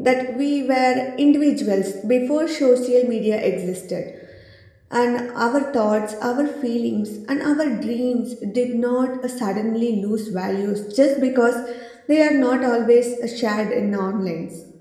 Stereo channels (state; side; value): identical; both; correlation 1.00